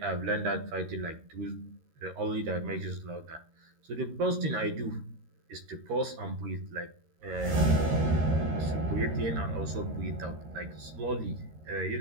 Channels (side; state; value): left; late; 13 ms